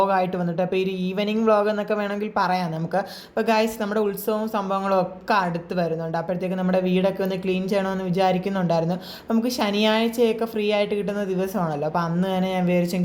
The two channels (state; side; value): identical; both; correlation 1.00